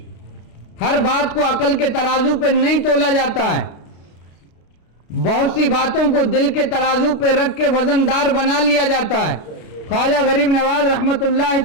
ہر بات کو عقل کے ترازو پہ نہیں تولا جاتا ہے، بہت سی باتوں کو دل کے ترازو پہ رکھ کے وزن دار بنا لیا جاتا ہے۔ خواجہ غریب نواز رحمت اللہ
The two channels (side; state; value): right; late; 33 ms